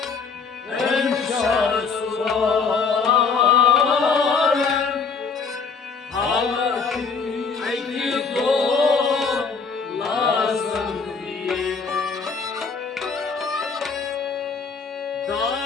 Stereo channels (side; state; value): right; quieter; 5.1 dB